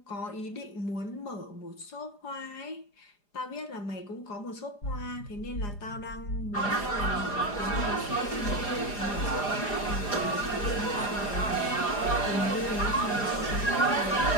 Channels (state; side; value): late; right; 4.9 ms